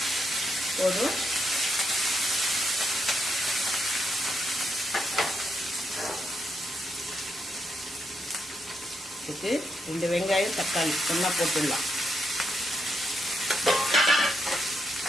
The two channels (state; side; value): normal; both; correlation 0.80